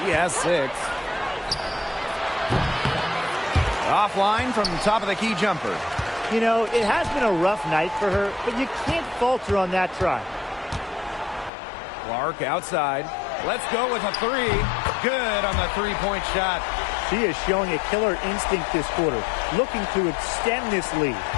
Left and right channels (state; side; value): drops out; right; at 11.5 s